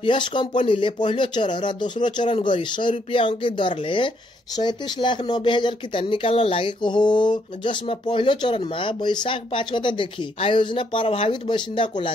यस कम्पनीले पहिलो चरण र दोस्रो चरण गरी 100 रुपियाँ अंकित दरले 37,90,000 किता निकाल्न लागेको हो, जसमा पहिलो चरणमा वैशाख 5 गतेदेखि आयोजना प्रभावित बासिन्दाको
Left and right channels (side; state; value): both; normal; correlation 0.72